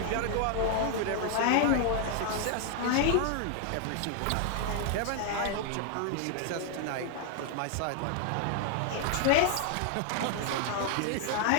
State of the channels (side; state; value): both; different; correlation 0.00